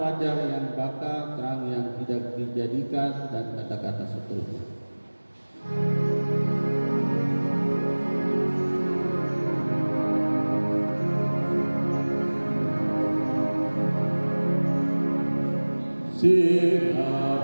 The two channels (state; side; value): inverted; both; correlation -1.00